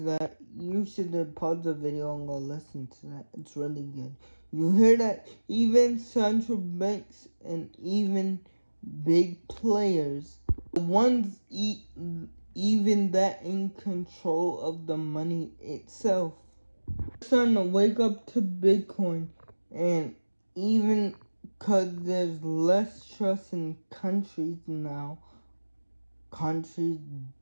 that, you should pause the video and go listen to that. It's really good. You hear that? Even central banks and even big players, the ones even that in control of the money itself, starting to wake up to Bitcoin. And even because there's less trust in countries now, countries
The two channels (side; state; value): both; inverted; correlation -1.00